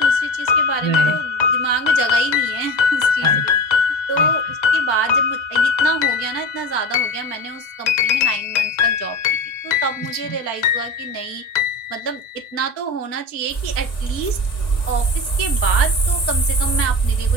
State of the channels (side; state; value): right; late; 1.6 ms